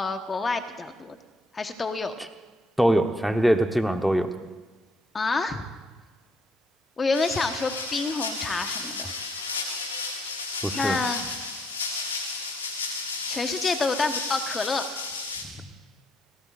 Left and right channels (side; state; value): both; normal; correlation 0.71